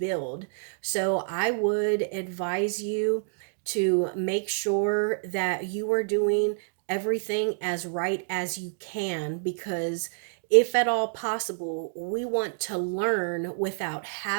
So I would advise you to make sure that you are doing everything as right as you can, because if at all possible, we want to learn without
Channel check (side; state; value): left; silent; digital silence